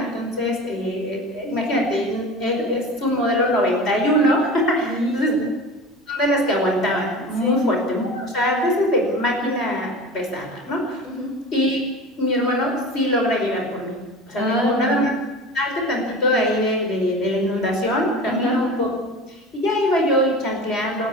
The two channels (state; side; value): normal; both; correlation 0.34